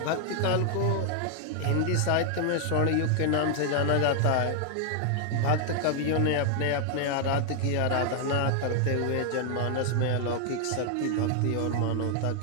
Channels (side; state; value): both; different; correlation 0.00